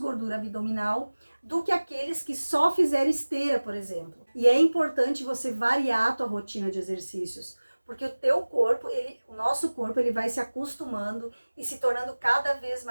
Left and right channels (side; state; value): both; inverted; correlation -1.00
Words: abdominal do que aqueles que só fizeram esteira, por exemplo. E é importante você variar a tua rotina de exercícios, porque o teu corpo, o nosso corpo, ele vai se acostumando e se tornando cada vez